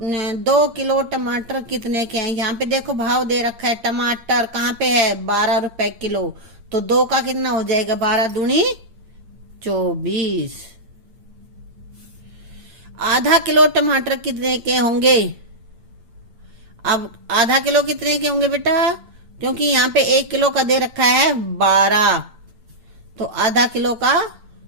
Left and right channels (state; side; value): late; left; 8.8 ms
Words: किलो टमाटर कितने के हैं। यहाँ पे देखो भाव दे रखा है, टमाटर कहाँ पे है, 12 रुपए किलो। तो दो का कितना हो जाएगा, 12 दूनी 24। आधा किलो टमाटर कितने के होंगे। अब आधा किलो कितने के होंगे बेटा, क्योंकि यहाँ पे 1 किलो का दे रखा है 12, तो आधा किलो का